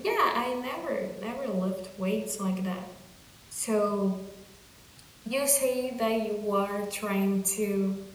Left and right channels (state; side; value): identical; both; correlation 1.00